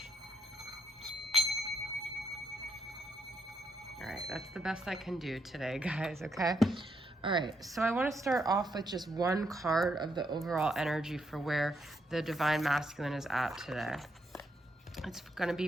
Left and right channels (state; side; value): normal; both; correlation 0.78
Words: All right, that's the best I can do today, guys, okay? All right, so I want to start off with just one card of the overall energy for where the Divine Masculine is at today. It's going to be